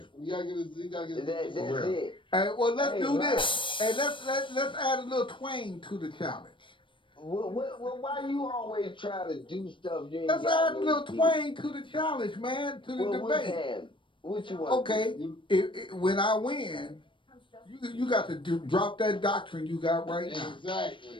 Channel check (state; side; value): late; right; 0.24 ms